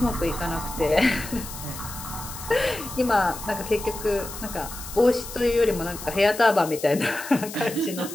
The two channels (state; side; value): noise; left; hiss, 11 dB below the sound